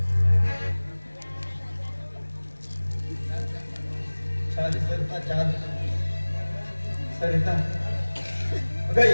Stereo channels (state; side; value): inverted; both; correlation -1.00